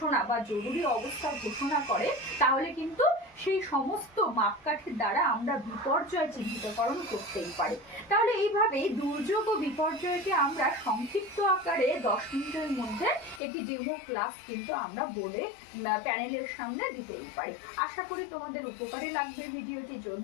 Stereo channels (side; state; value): right; drops out; at 13.4 s